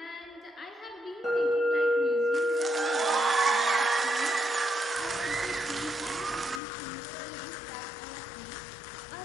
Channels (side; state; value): right; drops out; at 6.6 s